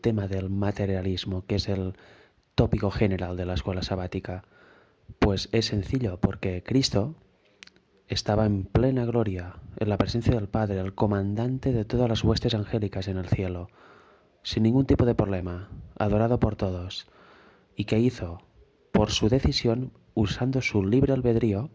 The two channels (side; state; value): both; identical; correlation 1.00